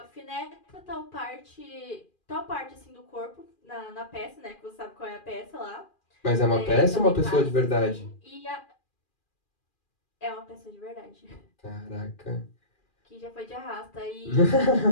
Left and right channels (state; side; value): late; right; 2.4 ms